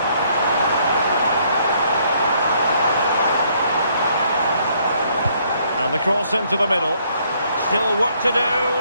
And the cross into the middle. Still work to do.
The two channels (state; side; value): inverted; both; correlation -0.67